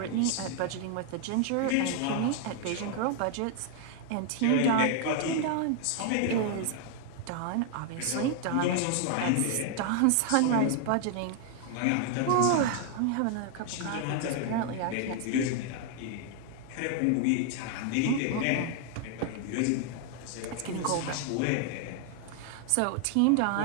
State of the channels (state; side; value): different; both; correlation 0.00